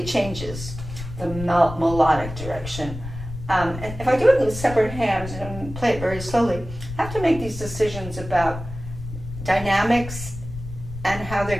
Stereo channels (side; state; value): left; noise; rumble, 10 dB below the sound